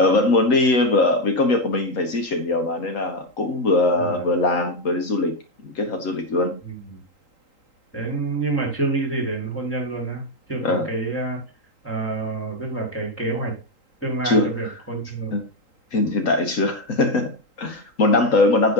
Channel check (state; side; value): late; right; 3.8 ms